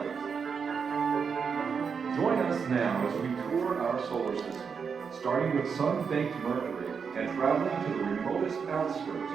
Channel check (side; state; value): left; quieter; 6.1 dB